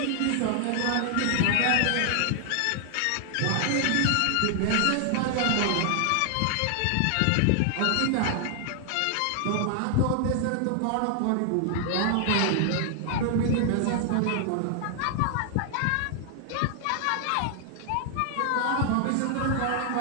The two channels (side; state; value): both; different; correlation 0.00